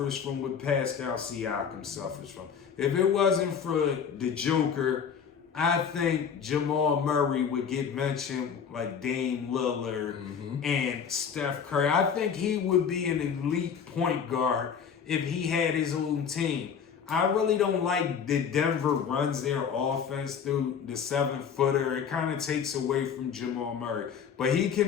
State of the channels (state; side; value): quieter; right; 7.1 dB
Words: from what Pascal Siakam suffers from. If it wasn't for the Joker I think Jamal Murray would get mentioned like Dame Lillard and Steph Curry. I think he would be an elite point guard if he had his own team. I really don't like that Denver runs their offense through the 7-footer. It kind of takes away from Jamal Murray. But he